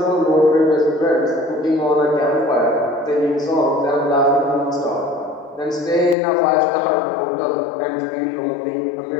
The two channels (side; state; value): right; drops out; at 6.2 s